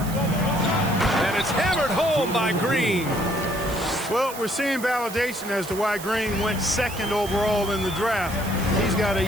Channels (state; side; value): noise; right; hiss, 12 dB below the sound